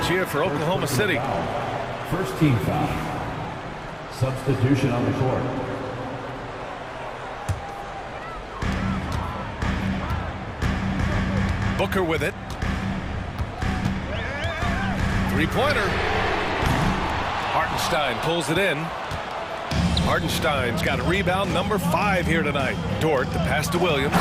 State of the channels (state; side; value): identical; both; correlation 1.00